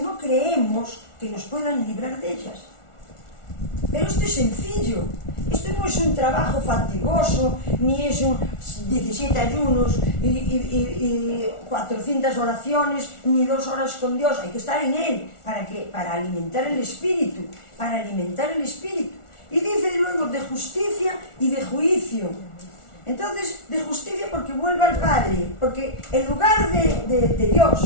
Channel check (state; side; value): late; right; 1.4 ms